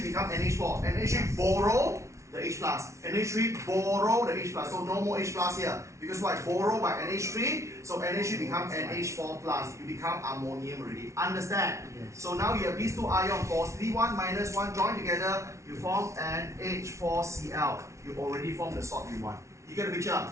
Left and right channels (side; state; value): left; late; 0.14 ms